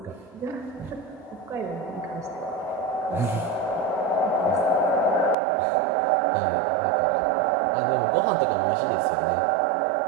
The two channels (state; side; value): drops out; left; at 5.4 s